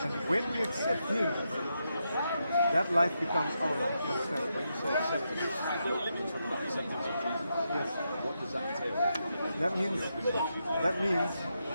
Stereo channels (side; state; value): both; inverted; correlation -0.84